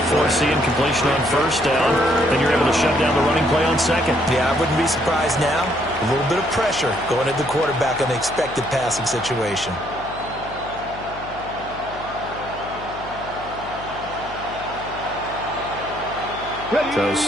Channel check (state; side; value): noise; left; hum, 15 dB below the sound